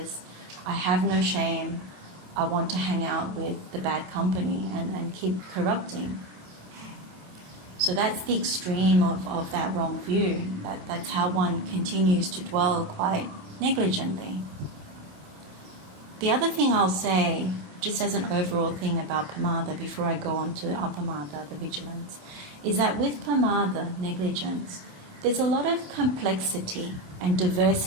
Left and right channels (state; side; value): late; left; 27 ms